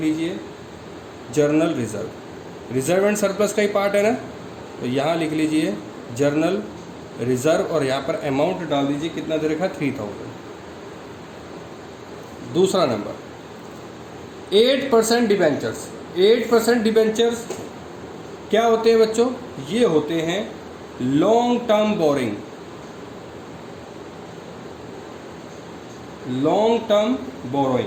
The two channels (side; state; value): both; identical; correlation 1.00